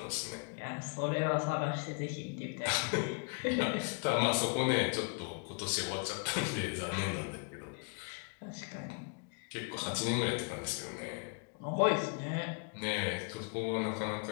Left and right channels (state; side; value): quieter; right; 37.5 dB